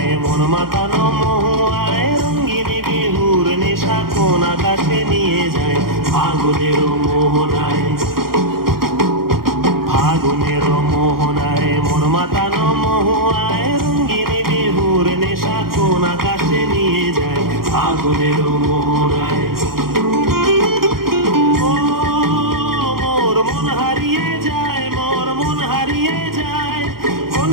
মন মাতানো মহুয়ায় রঙ্গিনী বিহুর নেশা কোন আকাশে নিয়ে যায়। ফাগুনের মোহনায়, ফাগুনের মোহনায় মন মাতানো মহুয়ায় রঙ্গিনী বিহুর নেশা কোন আকাশে নিয়ে যায়। ফাগুনের মোহনায় মোর মন হারিয়ে যায়, মোর মন হারিয়ে যায়,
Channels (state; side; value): late; left; 0.93 ms